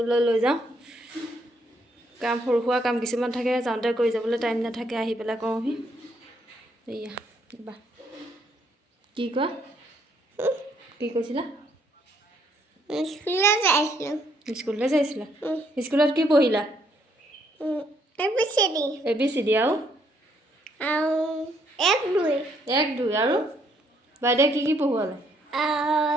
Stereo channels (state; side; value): normal; both; correlation 0.70